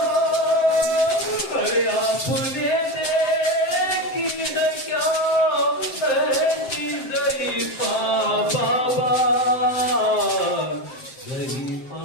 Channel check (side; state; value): right; late; 7.6 ms